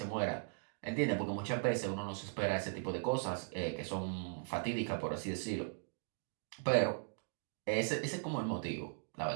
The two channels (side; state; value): left; silent; digital silence